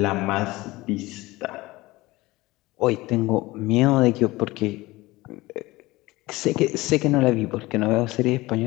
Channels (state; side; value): quieter; right; 20.0 dB